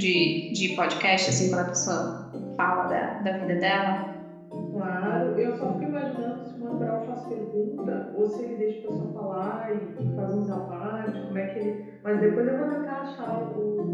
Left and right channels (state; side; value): identical; both; correlation 1.00